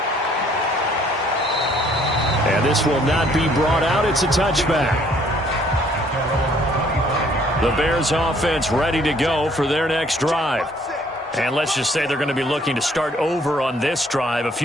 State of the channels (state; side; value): normal; both; correlation 0.62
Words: And this will not be brought out. It's a touchback. The Bears offense ready to go for their next drive. And let's just say they're going to be looking to start over on this drive. A